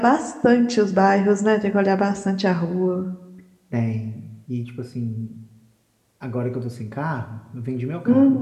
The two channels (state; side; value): identical; both; correlation 1.00